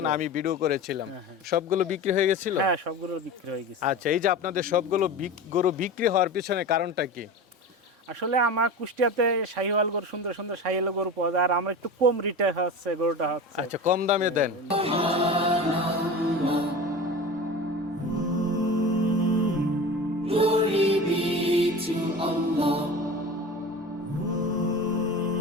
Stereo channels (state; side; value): normal; both; correlation 0.31